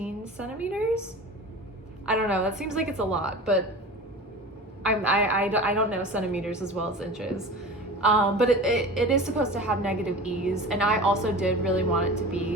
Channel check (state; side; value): normal; both; correlation 0.35